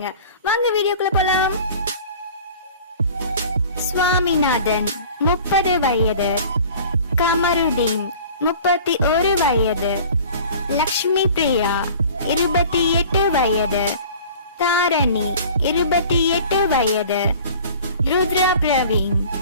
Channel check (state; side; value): inverted; both; correlation -0.44